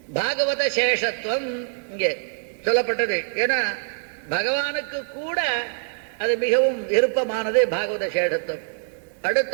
பாகவத சேஷத்துவம் இங்கே சொல்லப்பட்டது. ஏன்னா பகவானுக்கு கூட அது மிகவும் விருப்பமானது பாகவத சேஷத்துவம்.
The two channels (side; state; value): left; silent; 62 dB below the other